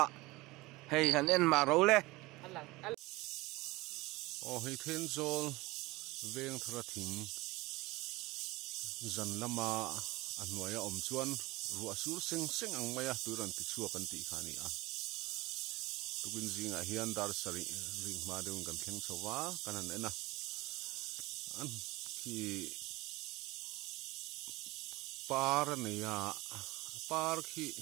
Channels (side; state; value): left; quieter; 21.1 dB